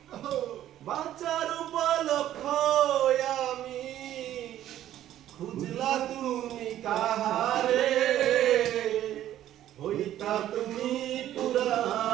বাঁচার উপলক্ষ আমি খুঁজলা তুমি কাহারে হইতা তুমি পুরা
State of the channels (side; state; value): left; quieter; 12.3 dB